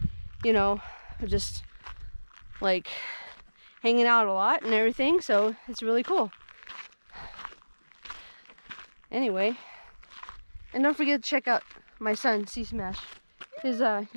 know, just like hanging out a lot and everything, so it's really cool. Anyway, and don't forget to check out my son C Smash, his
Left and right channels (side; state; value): both; inverted; correlation -1.00